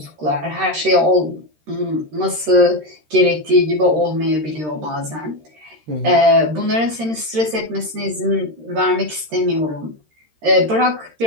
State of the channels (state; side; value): late; left; 13 ms